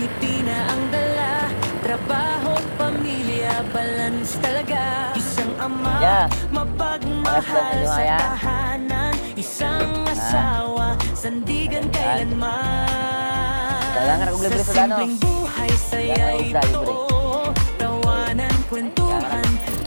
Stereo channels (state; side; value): inverted; both; correlation -1.00